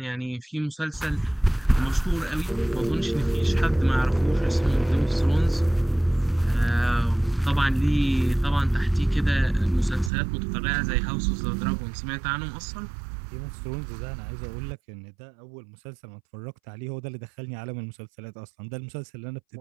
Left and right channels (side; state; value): left; drops out; at 10.1 s